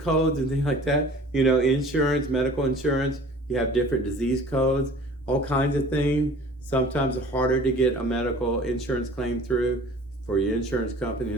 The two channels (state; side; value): normal; both; correlation 0.47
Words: and things like that. Insurance, medical insurance, you have different disease codes, all kinds of things. Sometimes it's harder to get a medical insurance claim through for your insurance company in